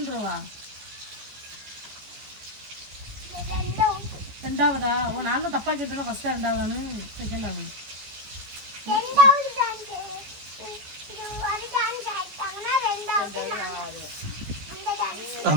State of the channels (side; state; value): left; late; 15 ms